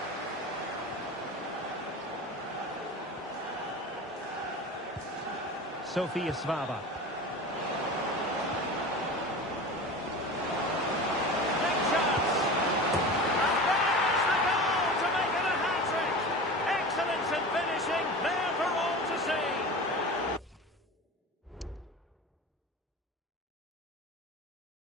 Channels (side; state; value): both; normal; correlation 0.32